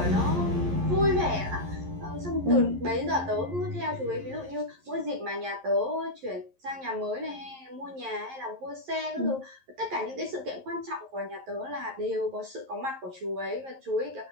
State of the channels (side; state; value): left; late; 11 ms